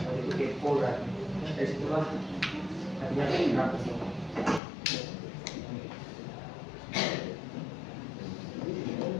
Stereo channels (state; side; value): drops out; right; at 4.6 s